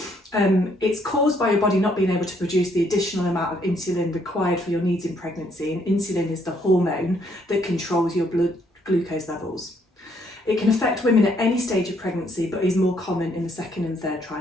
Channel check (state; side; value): normal; both; correlation 0.69